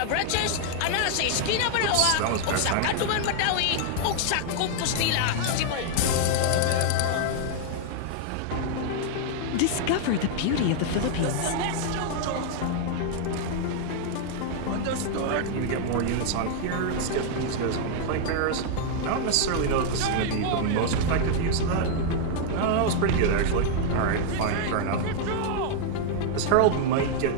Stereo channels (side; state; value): both; different; correlation 0.00